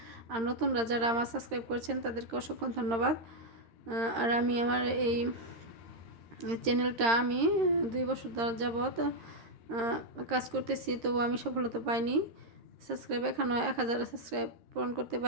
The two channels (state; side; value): late; left; 13 ms